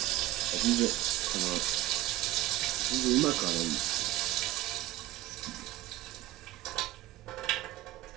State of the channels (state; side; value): quieter; left; 16.2 dB